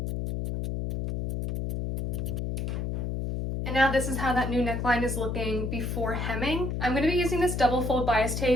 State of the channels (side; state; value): left; noise; hum, 2 dB below the sound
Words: And now this is how that new neckline is looking before hemming. I'm going to be using this double fold bias